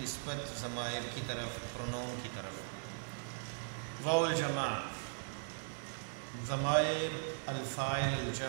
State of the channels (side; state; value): left; silent; digital silence